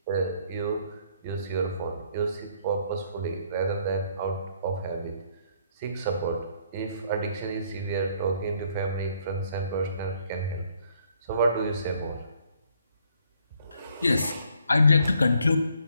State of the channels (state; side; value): inverted; both; correlation -0.66